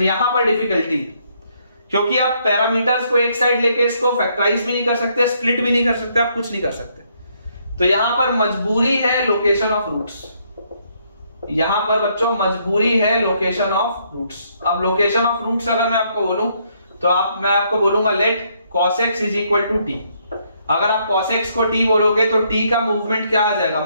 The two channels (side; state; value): both; inverted; correlation -0.71